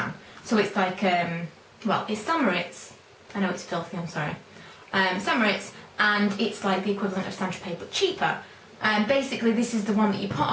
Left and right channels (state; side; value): identical; both; correlation 1.00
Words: So it's like, well, it's St. Moriz. I know it's filthy, I'm sorry. St. Moriz, and it's like the equivalent of Saint-Tropez but cheaper. Basically this is the one that you put